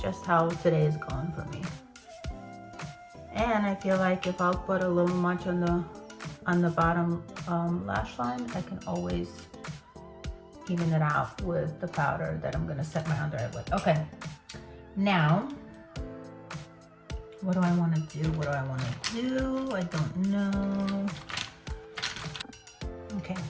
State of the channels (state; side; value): identical; both; correlation 1.00